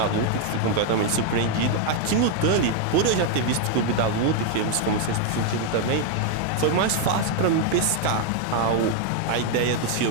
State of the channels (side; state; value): both; different; correlation 0.01